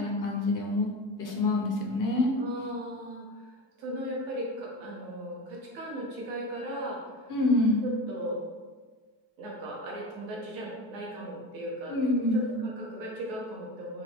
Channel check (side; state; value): left; late; 4.6 ms